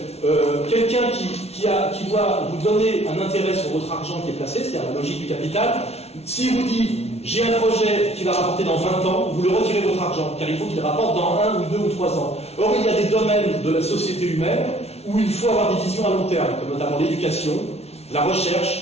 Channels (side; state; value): right; late; 0.31 ms